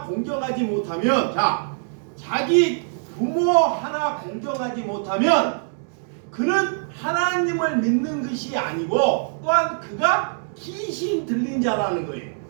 공경하지 못하면, 자, 자기 부모 하나 공경하지 못하면 그는 하나님을 믿는 것이 아니고 또한 그가 귀신 들린 자라는 거예요.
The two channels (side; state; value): left; silent; digital silence